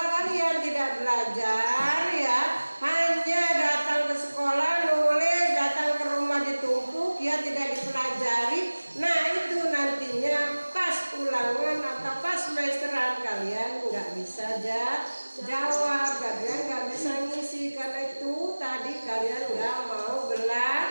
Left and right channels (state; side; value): inverted; both; correlation -1.00